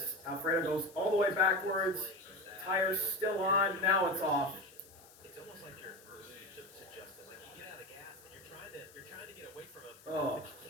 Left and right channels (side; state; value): left; noise; hiss, 23 dB below the sound